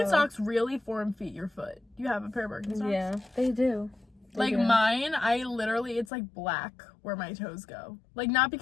really form-feet your foot. Do you have a pair of Birkenstocks? Yeah, they do. Like, mine, it's, like, black where my toes go. Like, not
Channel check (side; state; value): right; drops out; at 6.1 s